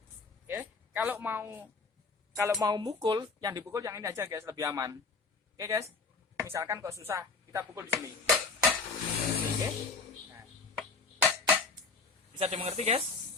Oke, kalau mau mukul, yang dipukul yang ini aja, guys, lebih aman. Oke, guys. Misalkan kok susah, kita pukul di sini. Oke. Nah. Bisa dimengerti, guys?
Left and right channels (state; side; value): quieter; right; 4.4 dB